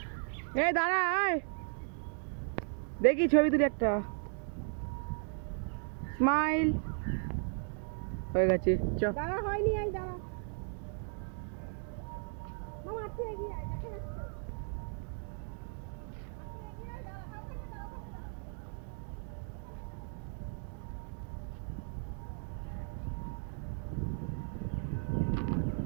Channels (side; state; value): left; silent; 54 dB below the other